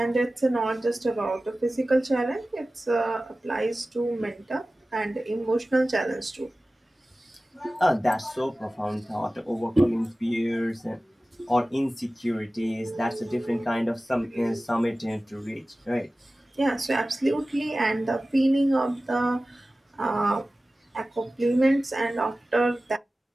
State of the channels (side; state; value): both; normal; correlation 0.96